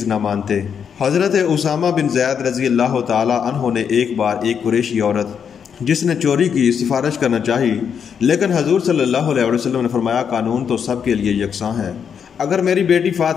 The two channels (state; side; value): quieter; right; 7.4 dB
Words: نہ مانتے۔ حضرت اسامہ بن زید رضی اللہ تعالی عنہ نے ایک بار ایک قریشی عورت جس نے چوری کی سفارش کرنا چاہی، لیکن حضور صلی اللہ علیہ وسلم نے فرمایا قانون تو سب کے لیے یکساں ہے، اگر میری بیٹی